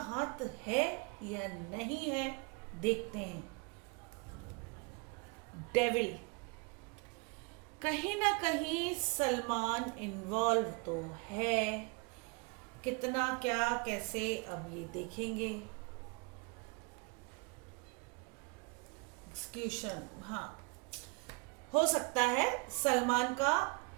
है या नहीं है देखते हैं। डेविल, कहीं ना कहीं सलमान इन्वॉल्व तो है, कितना, क्या, कैसे, अब ये देखेंगे। एक्सक्यूशन, हाँ, हो सकता है सलमान का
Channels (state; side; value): quieter; left; 30.5 dB